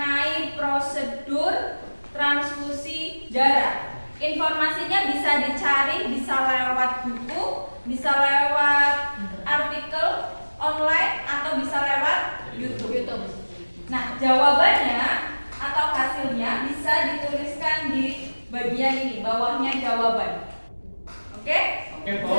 prosedur transfusi darah. Informasinya bisa dicari, bisa lewat buku, bisa lewat artikel online, atau bisa lewat YouTube. Nah, jawabannya atau hasilnya bisa dituliskan di bagian ini, bawahnya jawaban. Oke? Oke, Bu.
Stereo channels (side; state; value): both; inverted; correlation -1.00